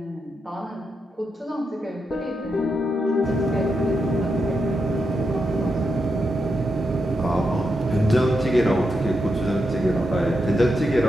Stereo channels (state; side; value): normal; both; correlation 0.85